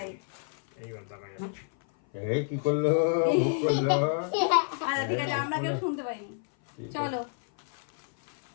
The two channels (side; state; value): right; silent; 57 dB below the other